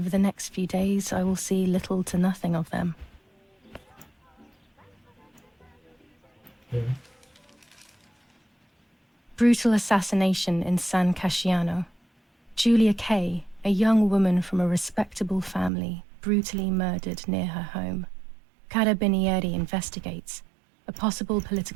the next few days, I will see little to nothing of them. Okay. Brutal assassination in San Casciano. Julia Kay, a young woman from a respectable family, brutally murdered near her home. Carabinieri investigates. A possible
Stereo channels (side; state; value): left; drops out; at 15.7 s